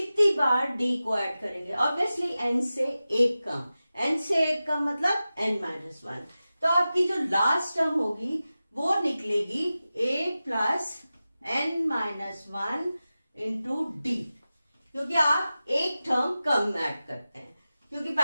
बार d को ऐड करेंगे, ऑब्वियसली n से एक कम. n से एक कम मतलब n-1. तो आपकी जो लास्ट टर्म होगी वो निकलेगी a + n-1 इंटू d, क्योंकि आप एक टर्म कम ऐड करते हैं, क्योंकि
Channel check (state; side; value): inverted; both; correlation -0.95